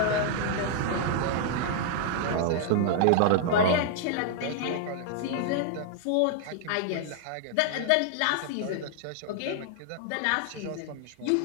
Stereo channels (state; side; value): different; both; correlation 0.00